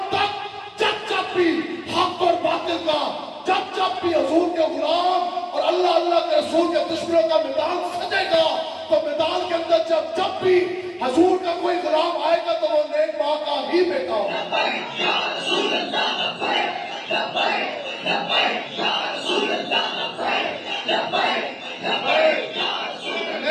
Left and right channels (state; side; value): identical; both; correlation 1.00